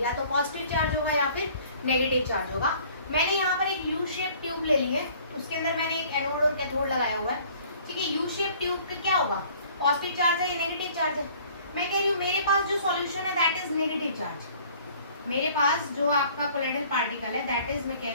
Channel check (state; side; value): inverted; both; correlation -0.54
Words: या तो पॉजिटिव चार्ज होगा या फिर नेगेटिव चार्ज होगा। मैंने यहाँ पर एक यू शेप ट्यूब ले ली है, उसके अंदर मैंने एक एनोड और कैथोड लगाया हुआ है, ठीक है। यू शेप ट्यूब पे क्या होगा, पॉजिटिव चार्ज है या नेगेटिव चार्ज है। मैं कह रही हूँ मेरे पास जो सॉल्यूशन है दैट इज नेगेटिव चार्ज, मेरे पास जो आपका कोलाइडल पार्टिकल है दैट इज, मैं कह